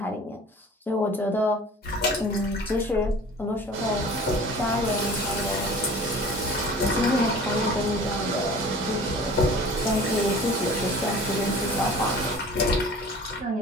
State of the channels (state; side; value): normal; both; correlation 0.44